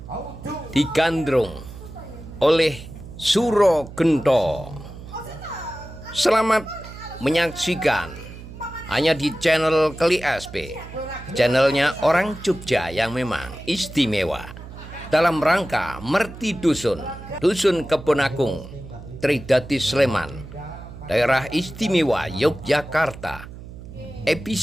digandrung oleh Suro Gento. Selamat menyaksikan hanya di channel Keli SP, channelnya orang Jogja yang memang istimewa dalam rangka Merti Dusun, Dusun Kebonagung, Tridati Sleman, Daerah Istimewa Yogyakarta,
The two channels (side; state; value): right; noise; hum, 14 dB below the sound